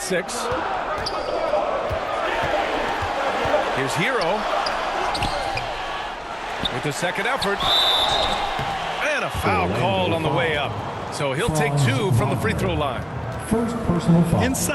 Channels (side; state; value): both; identical; correlation 1.00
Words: 6. Here's Hero. With the second effort. And a foul called on the way up. So he'll take 2 from the free throw line. First personal foul.